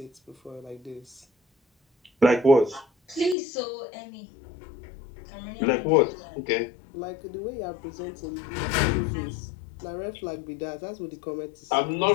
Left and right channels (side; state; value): right; drops out; at 3.4 s